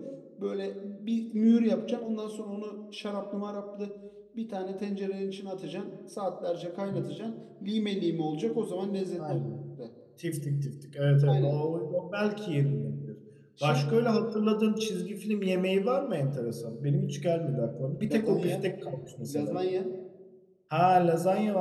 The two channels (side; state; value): both; identical; correlation 1.00